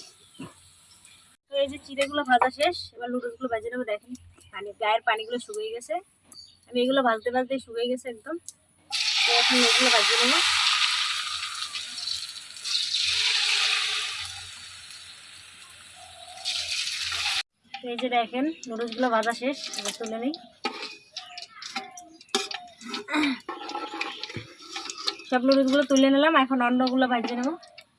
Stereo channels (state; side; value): identical; both; correlation 1.00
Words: তো এই যে চিড়েগুলো ভাজা শেষ, এবার লুডুসগুলো ভেজে নেবো। দেখেন গায়ের পানিগুলো শুকিয়ে গেছে, আমি এগুলো ভাজতে ভাজতে শুকিয়ে গেছে একদম। তো এখন এগুলো ভাজিয়ে নেবো। তো এই যে দেখেন নুডলসগুলো ভাজা শেষ, এবার তুলে নিই। সব নুডলসগুলো তুলে নিলাম, এখন অন্যগুলো ভাজিয়ে নেবো।